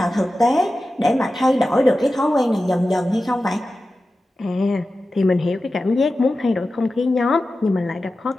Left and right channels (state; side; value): normal; both; correlation 0.94